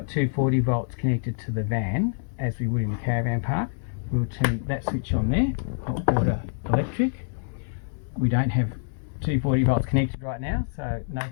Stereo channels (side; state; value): right; silent; 61 dB below the other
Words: 240 volts connected to the van, as we would in the caravan park, we'll turn that switch on there, hot water electric. We don't have 240 volts connected right now, so no